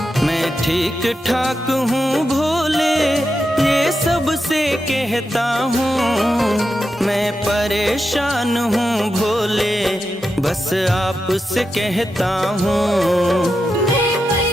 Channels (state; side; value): normal; both; correlation 0.88